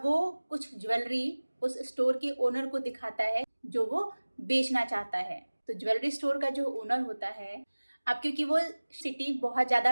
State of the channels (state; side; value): inverted; both; correlation -1.00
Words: वो कुछ ज्वेलरी उस स्टोर के ओनर को दिखाता है जो वो बेचना चाहता है। तो ज्वेलरी स्टोर का जो ओनर होता है, अब क्योंकि वो सिटी बहुत